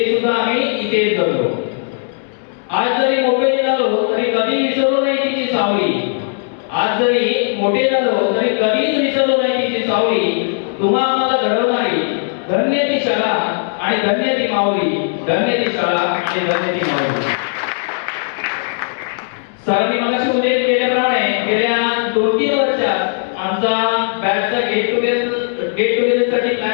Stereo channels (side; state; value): right; silent; digital silence